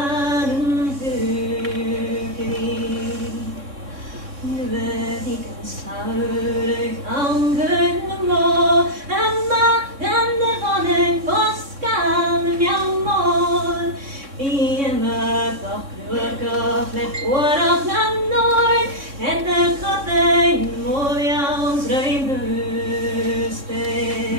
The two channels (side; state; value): left; late; 3.6 ms